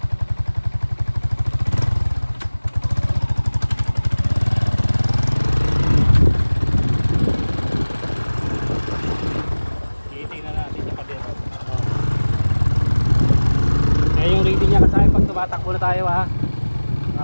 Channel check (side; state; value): both; inverted; correlation -1.00